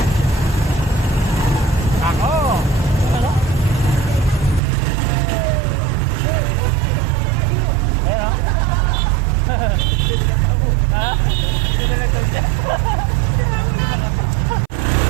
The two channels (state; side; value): drops out; left; at 4.6 s